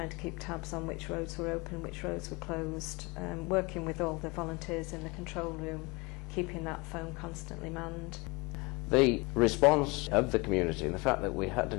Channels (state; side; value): quieter; right; 26.4 dB